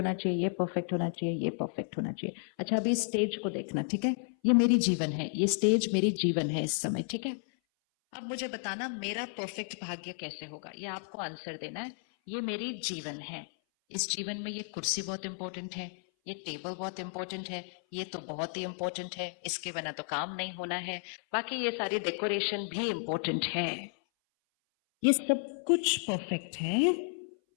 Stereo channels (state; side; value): silent; right; 56 dB below the other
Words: चाहिए, ये परफेक्ट होना चाहिए, ये परफेक्ट होना चाहिए। अच्छा, अभी स्टेज को देखना, ठीक है? ये मेरी जीवन है, ये स्टेज मेरी जीवन है इस समय, ठीक है? अब मुझे बताना, मेरा परफेक्ट भाग्य कैसे होगा, ये आपको आंसर देना है। ये मेरी जीवन है, इस जीवन में ये कुर्सी बहुत इंपॉर्टेंट है, ये टेबल बहुत इंपॉर्टेंट है, ये तो बहुत ही इंपॉर्टेंट है, इसके बिना तो काम नहीं होना है, बाकी ये सारी डेकोरेशन भी इंपॉर्टेंट है। ये सब कुछ परफेक्ट है,